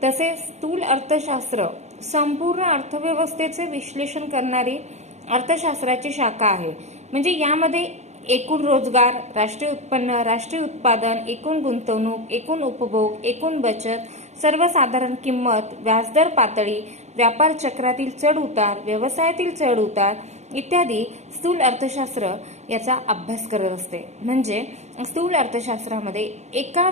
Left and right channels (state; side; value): late; left; 0.32 ms